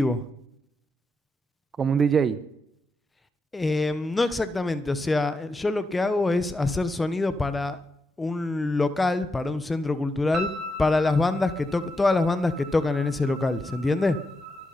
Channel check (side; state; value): both; normal; correlation 0.84